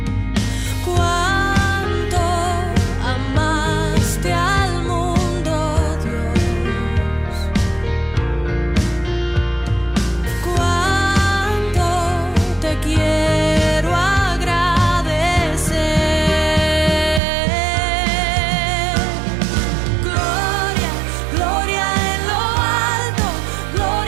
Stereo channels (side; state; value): left; drops out; at 17.2 s